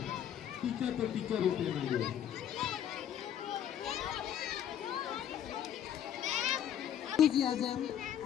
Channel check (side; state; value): right; quieter; 10.0 dB